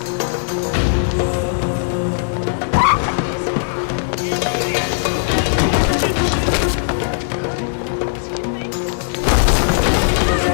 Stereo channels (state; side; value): silent; right; 65 dB below the other